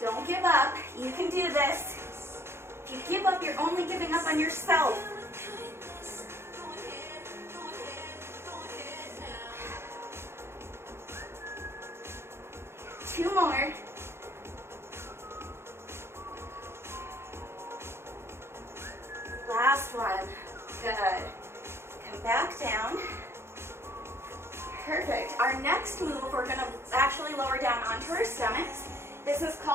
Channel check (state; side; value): late; left; 0.12 ms